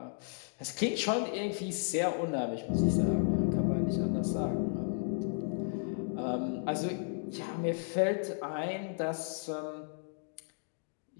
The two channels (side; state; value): right; silent; digital silence